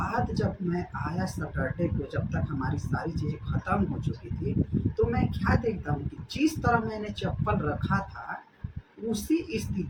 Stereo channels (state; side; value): identical; both; correlation 1.00